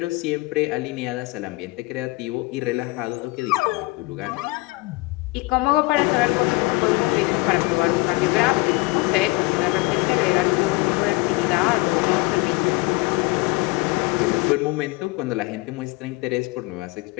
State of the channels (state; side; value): quieter; right; 23.5 dB